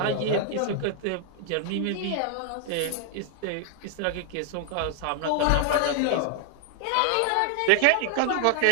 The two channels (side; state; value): both; different; correlation 0.00